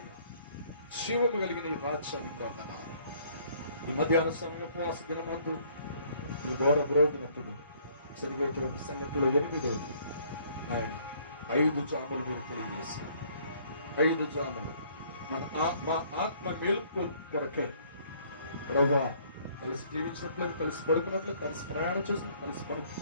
జీవము కలిగిన ఈ రాజ్యానికి వందనాలు. ఈ మధ్యాహ్న సమయం ఉపవాస దినమందు ఈ ఘోర బ్రోగినప్పుడు జరిగేటువంటి సంగతిలో 8వ ఆయన 5 జాములు మీరు తెలియజేశారు. 5 జాములు మా ఆత్మ మేలుకు కొరకే ప్రభువా, కలిసి జీవించినట్లు, కలిసి పడుకున్నట్లు, కలిసి ప్రయాణం చేసినట్లు, కలిసి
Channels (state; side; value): inverted; both; correlation -0.61